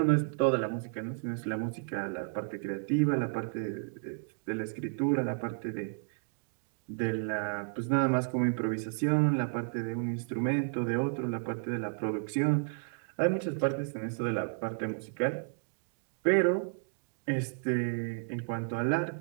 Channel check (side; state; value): left; silent; 56 dB below the other